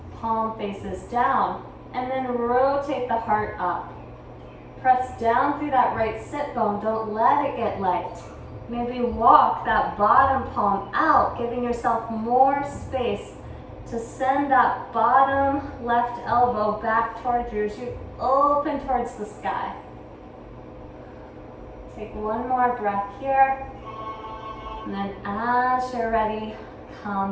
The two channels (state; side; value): identical; both; correlation 1.00